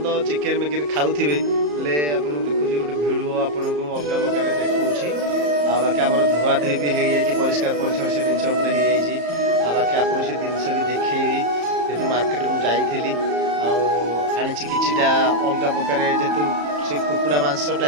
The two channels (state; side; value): late; left; 34 ms